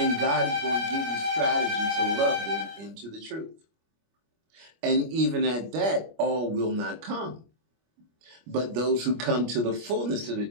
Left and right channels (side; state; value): left; late; 25 ms